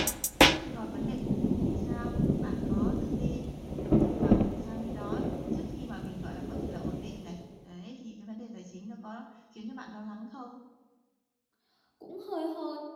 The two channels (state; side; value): identical; both; correlation 1.00